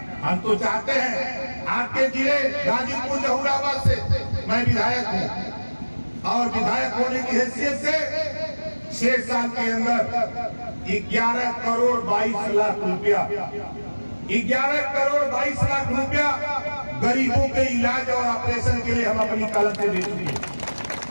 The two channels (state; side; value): inverted; both; correlation -1.00